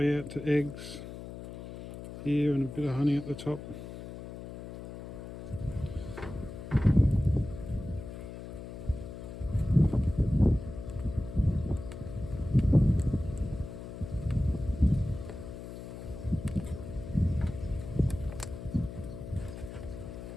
out to eggs here, and a bit of honey at the top.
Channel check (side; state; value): left; noise; hum, 11 dB below the sound